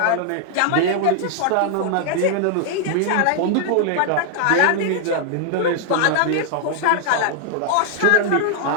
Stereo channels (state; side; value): different; both; correlation 0.00